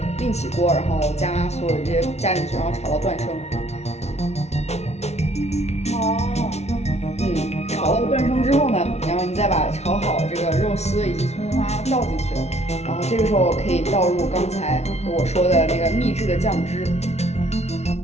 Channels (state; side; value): late; right; 0.31 ms